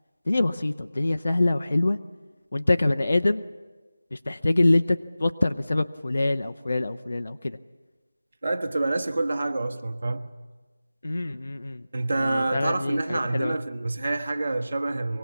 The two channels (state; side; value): inverted; both; correlation -0.96